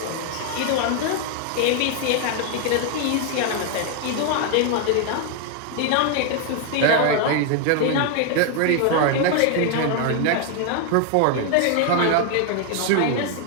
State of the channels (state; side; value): different; both; correlation 0.00